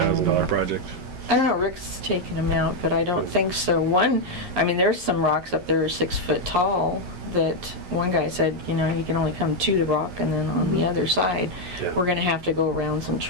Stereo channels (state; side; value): late; left; 11 ms